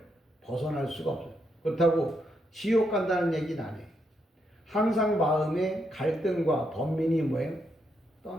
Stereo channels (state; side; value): normal; both; correlation 0.79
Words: 벗어날 수가 없어요. 그렇다고 지옥 간다는 얘기는 안 해요. 항상 마음에 갈등과 번민이